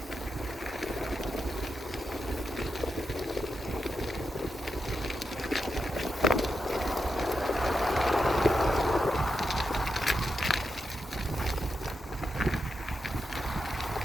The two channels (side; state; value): both; normal; correlation 0.86